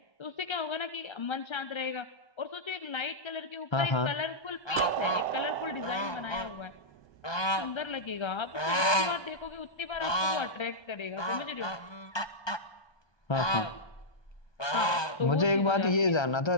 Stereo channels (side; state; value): right; late; 1.2 ms